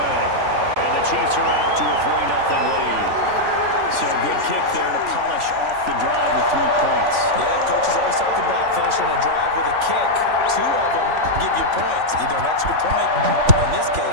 And the Chiefs are out to a 3-0 lead. So good kick there to polish off the drive with 3 points. Yeah, coaches always talk about finishing a drive with a kick. 2 of them give you points, either an extra point, or in this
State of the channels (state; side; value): late; left; 3.5 ms